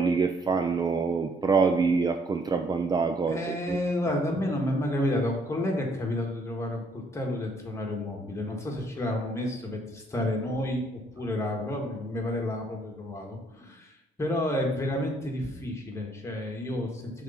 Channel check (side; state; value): both; normal; correlation 0.66